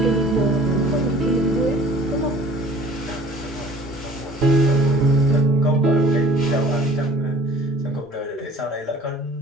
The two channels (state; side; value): normal; both; correlation 0.50